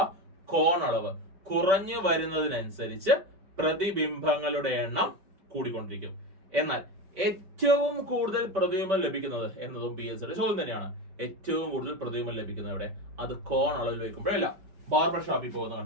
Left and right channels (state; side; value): late; left; 5.2 ms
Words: കോണളവ് കുറഞ്ഞു വരുന്നതിനനുസരിച്ച് പ്രതിബിംബങ്ങളുടെ എണ്ണം കൂടിക്കൊണ്ടിരിക്കും. എന്നാൽ ഏറ്റവും കൂടുതൽ പ്രതിബിംബം ലഭിക്കുന്നത് എന്നതും PSCയുടെ ചോദ്യം തന്നെയാണ്. ഏറ്റവും കൂടുതൽ പ്രതിബിംബം ലഭിക്കുന്നത് എവിടെ? അത് കോൺ അളവിൽ വയ്ക്കുമ്പോഴല്ല, ബാർബർ ഷോപ്പിൽ പോകുന്ന